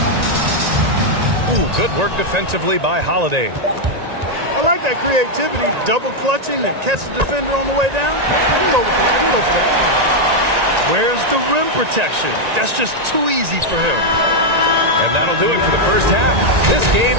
Ooh, good work defensively by Holiday. I like that creativity, double clutching to catch the defender on the way down. I can go for that. I can go for that. Where's the rim protection? That's just too easy for him. And that'll do it for the first half. This game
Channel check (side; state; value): left; late; 1.9 ms